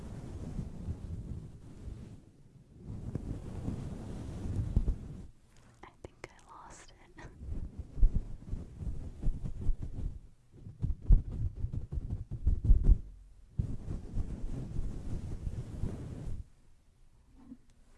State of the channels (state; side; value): identical; both; correlation 1.00